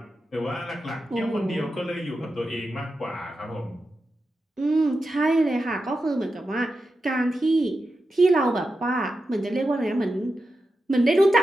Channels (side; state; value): both; normal; correlation 0.90